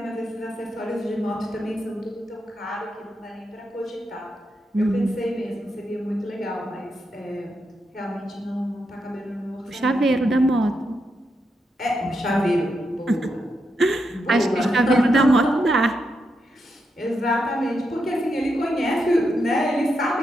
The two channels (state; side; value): normal; both; correlation 0.83